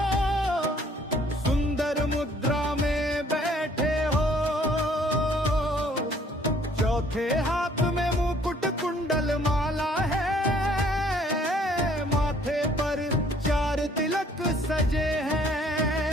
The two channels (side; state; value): both; normal; correlation 0.60